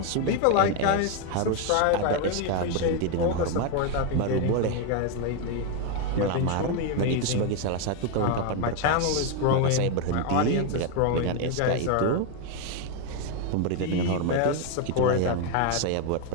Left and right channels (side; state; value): both; different; correlation 0.01